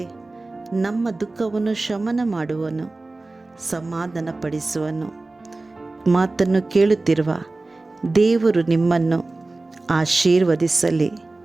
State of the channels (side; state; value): left; quieter; 3.2 dB